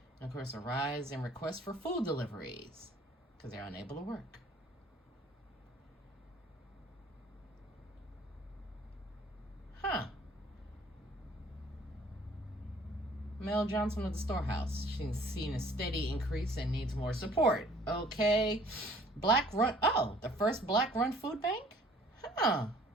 And of course, a rise in requests for food deliveries because they're unable to work. Mel Johnson of the storehouse. She's seen a steady increase and needs more support. Okay. The first black run food bank?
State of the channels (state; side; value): normal; both; correlation 0.55